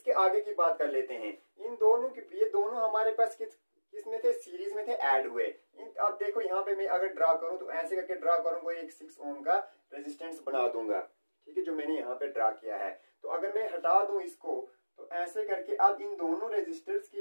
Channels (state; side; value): inverted; both; correlation -1.00